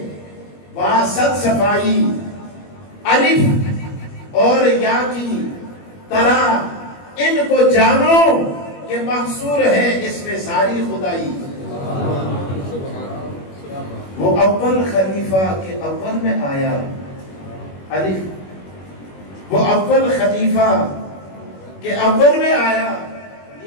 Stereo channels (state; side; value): late; right; 21 ms